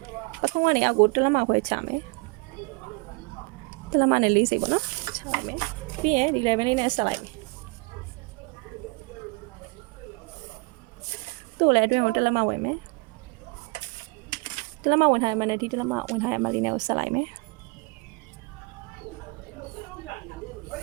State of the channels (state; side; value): quieter; left; 29.2 dB